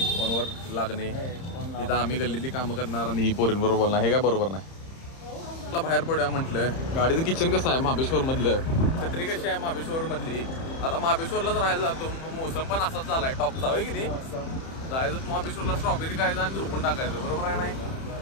फोनवर लागणे. तिथं आम्ही गल्लीतली कामं करणार आणि ही पोरींवर बोलणार, हे काय बरोबर नाही. मला बाहेर पडूया म्हटलं. गाडीचं किचन कसं आहे महाबळेश्वर मधलं, छत्री कशी आहे महाबळेश्वर मधली. आता महाबळेश्वरलाच राहायला जातो, मोसम पण असाच झालाय टॉपचा होय की नाही. जायचं महाबळेश्वरला, स्ट्रॉबेरी खायचं आणि झोपून टाकायचं, बरोबर आहे नाही.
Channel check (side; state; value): right; late; 30 ms